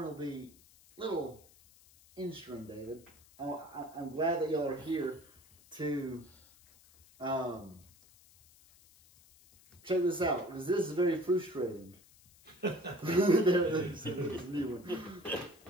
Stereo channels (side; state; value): left; noise; hiss, 26 dB below the sound